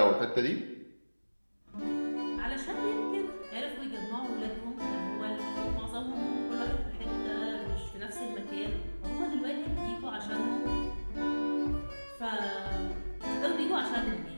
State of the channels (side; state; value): both; inverted; correlation -1.00